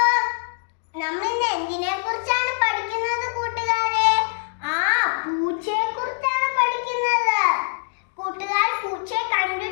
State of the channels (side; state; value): right; silent; digital silence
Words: നമ്മൾ ഇന്ന് എന്തിനെ കുറിച്ചാണ് പഠിക്കുന്നത് കൂട്ടുകാരെ? പൂച്ചയെ കുറിച്ചാണ് പഠിക്കുന്നത്. കൂട്ടുകാർ പൂച്ചയെ